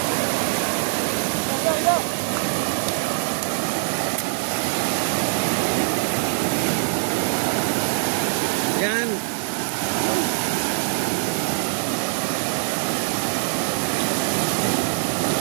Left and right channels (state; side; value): silent; left; digital silence